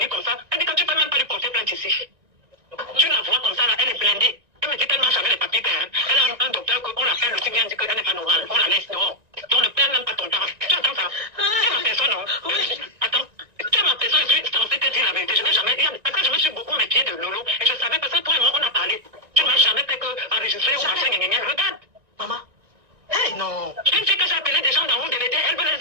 comme ça, elle dit que tu peux même pas lui porter plainte ici. Tu la vois comme ça, là, elle est blindée. Elle me dit qu'elle marche avec les papiers. Elle a un docteur qu'on l'appelle aussi bien dit qu'elle n'est pas normale. On la laisse dehors. On ne perd même pas ton temps. Tu entends ça? Tu es ma personne, non? Attends. Tu es ma personne, je suis censée te dire la vérité. Je n'ai jamais dit. Parce que je me suis beaucoup méfiée de Lolo. Et je savais parce que toi et moi, on a parlé. Tu ne m'as jamais fait enregistrer ou machin, regarde. Maman. Hey, non. Une fille que j'ai appelé des gens dans le DVD, elle veut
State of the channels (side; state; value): left; late; 1.9 ms